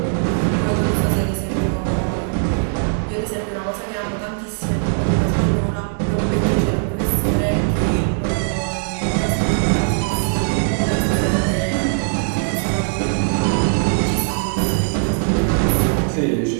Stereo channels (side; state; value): left; silent; digital silence